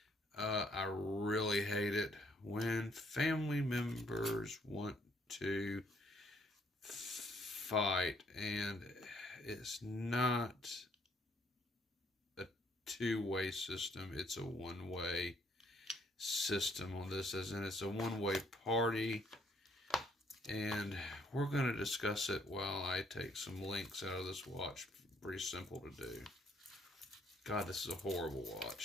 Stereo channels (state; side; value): normal; both; correlation 0.67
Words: I really hate it when family members want to fight, and it's not a two-way system, it's a one-way system on this, as in it's a one-way party, and we're going to discuss it while I take some links out of this watch. Pretty simple to do. God, this is a horrible